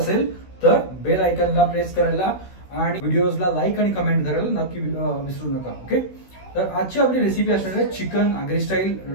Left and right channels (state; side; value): late; right; 16 ms